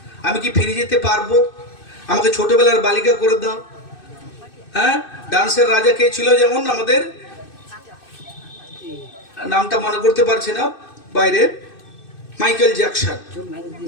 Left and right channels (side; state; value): right; late; 2.6 ms